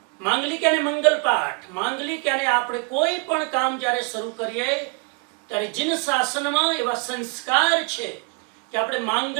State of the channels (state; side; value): quieter; left; 32.1 dB